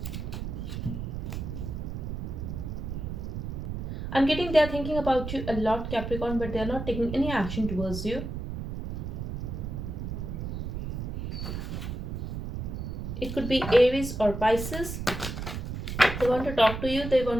I'm getting they're thinking about you a lot, Capricorn, but they're not taking any action towards you. It could be Aries or Pisces. They want to talk to you, they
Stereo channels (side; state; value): right; noise; rumble, 5 dB below the sound